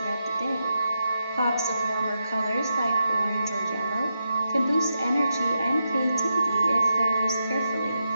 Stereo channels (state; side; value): inverted; both; correlation -0.86